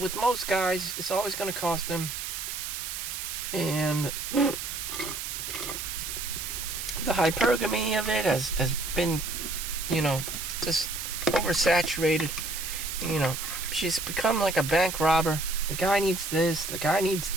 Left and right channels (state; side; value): noise; right; hiss, 5 dB below the sound